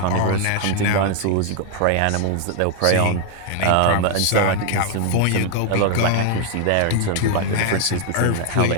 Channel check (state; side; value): different; both; correlation 0.00